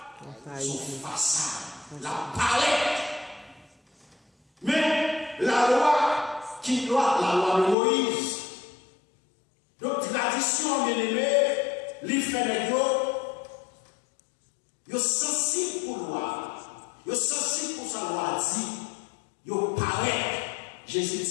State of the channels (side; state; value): right; drops out; at 7.8 s